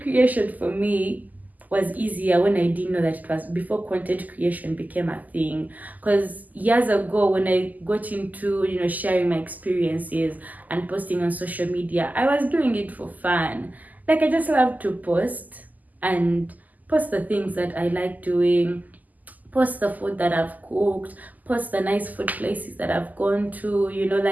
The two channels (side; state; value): left; late; 0.081 ms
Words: creation for me was easier when I didn't know that it was before content creation became a thing. Because years ago, when I got into sharing my experiences and posting on social media, I was doing it for fun. Like I just love to post and post the things that I like doing, post the food that I've cooked, post the nice food places that I've gone to,